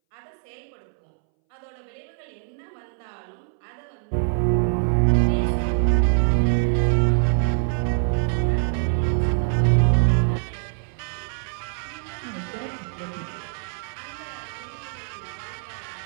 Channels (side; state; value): left; silent; 62 dB below the other